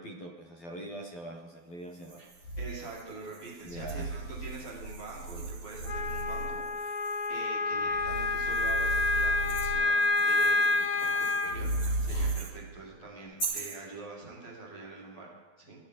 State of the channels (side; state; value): right; late; 12 ms